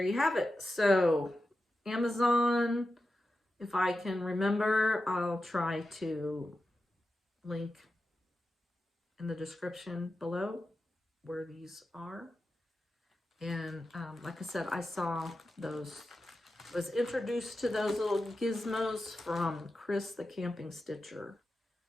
you have it. So Amazon, if I can remember, I'll try to link in the description below where these are. And like I said, I saw those, was introduced to those little gizmos from Chris the Camping Stitcher.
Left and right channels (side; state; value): both; normal; correlation 0.91